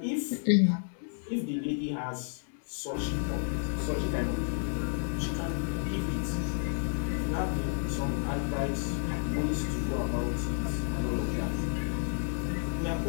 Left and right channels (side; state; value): right; silent; digital silence